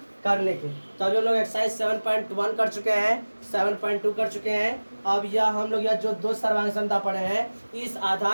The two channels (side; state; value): both; inverted; correlation -1.00